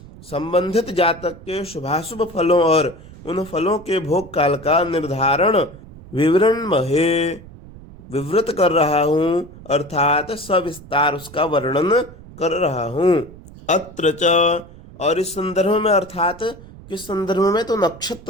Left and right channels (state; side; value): noise; right; rumble, 19 dB below the sound